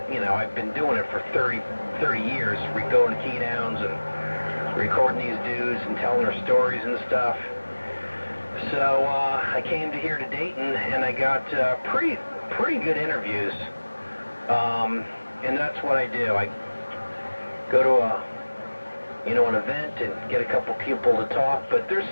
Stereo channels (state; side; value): inverted; both; correlation -1.00